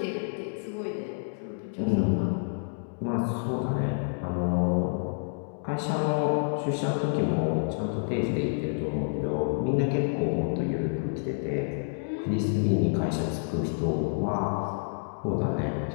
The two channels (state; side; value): silent; right; digital silence